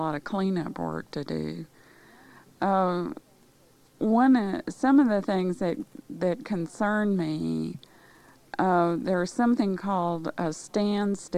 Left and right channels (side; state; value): both; identical; correlation 1.00